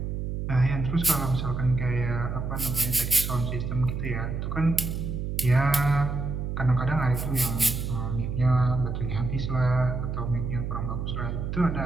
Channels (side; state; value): right; noise; hum, 3 dB below the sound